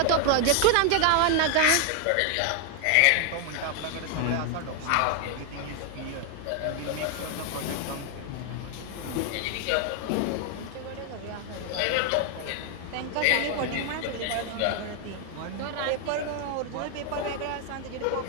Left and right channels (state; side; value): different; both; correlation 0.01